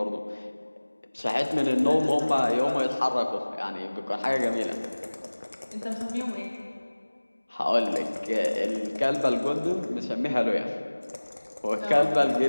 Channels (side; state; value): both; inverted; correlation -1.00